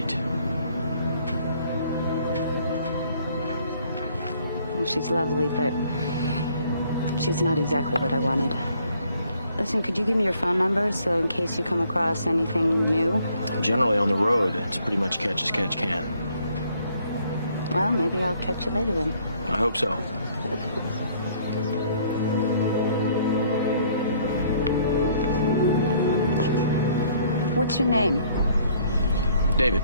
Well, she's lovely, but she's not exactly what I wanted. Listen, could you give me your phone number so in case you come across anything new? Generally on the road, it's pretty much catch as catch can. Well, maybe I'll catch you later then. I hope so. What's your name? David.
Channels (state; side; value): inverted; both; correlation -0.63